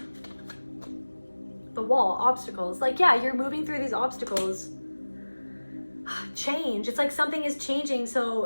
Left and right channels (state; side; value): inverted; both; correlation -1.00